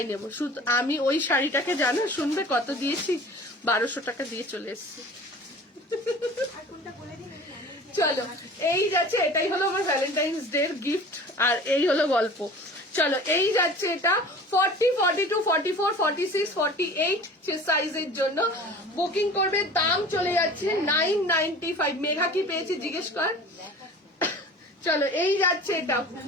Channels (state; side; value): normal; both; correlation 0.42